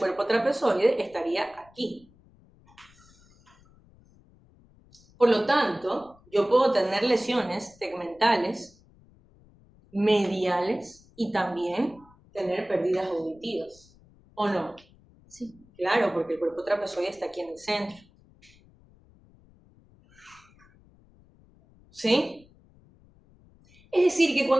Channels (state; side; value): noise; left; rumble, 28 dB below the sound